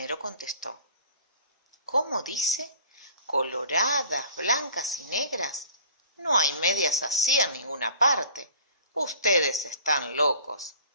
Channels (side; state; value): both; inverted; correlation -0.46